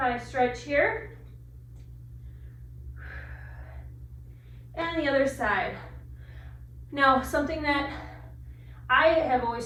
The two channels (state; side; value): identical; both; correlation 1.00